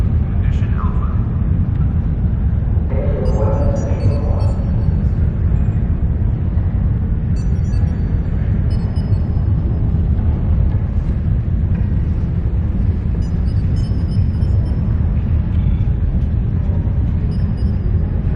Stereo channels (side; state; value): both; identical; correlation 1.00